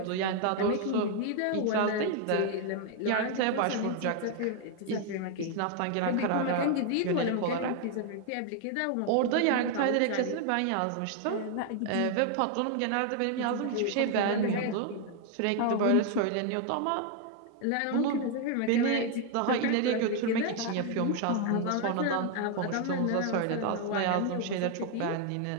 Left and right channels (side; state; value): both; different; correlation 0.01